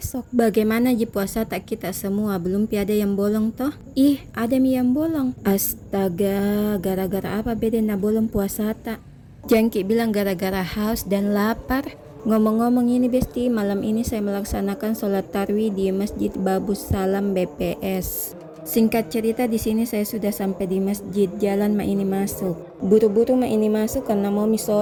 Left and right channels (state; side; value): identical; both; correlation 1.00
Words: Bagaimana ji puasa tak kita semua, belum ada yang bolong toh? Ih, ada mi yang bolong. Astaga, gara-gara apa beda na bolong puasa tak? Jangki bilang gara-gara haus dan lapar. Ngomong-ngomong ini besti, malam ini saya melaksanakan sholat tarwih di Masjid Babus Salam BPS. Singkat cerita di sini saya sudah sampai di masjid, jalan ma ini masuk. Buru-buru ma ini masuk karena mau mi